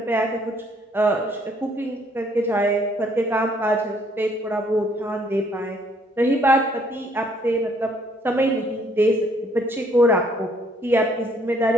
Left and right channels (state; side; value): normal; both; correlation 0.65